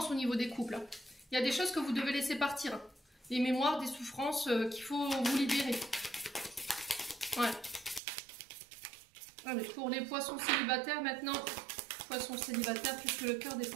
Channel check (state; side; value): drops out; left; at 8.0 s